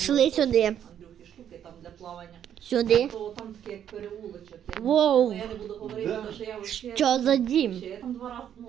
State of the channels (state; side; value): quieter; left; 9.7 dB